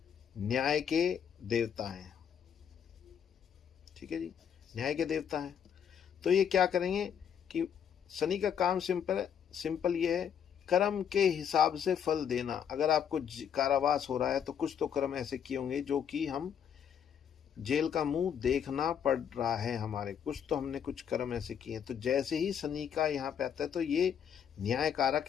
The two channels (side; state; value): right; quieter; 8.2 dB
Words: न्याय के देवता हैं, ठीक है जी, न्याय के देवता हैं। तो ये क्या करेंगे कि शनि का काम सिंपल ये है, कर्म के हिसाब से फल देना। अगर आपको कारावास हो रहा है तो कुछ तो कर्म ऐसे किए होंगे जो कि हम जेल का मुंह देखना पड़ रहा है हमारे, कुछ तो हमने कुछ कर्म ऐसे किए। तो जैसे ही शनि का यहाँ पे आता है तो ये न्याय